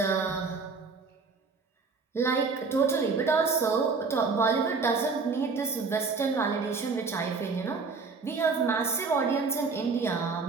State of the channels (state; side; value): quieter; left; 4.5 dB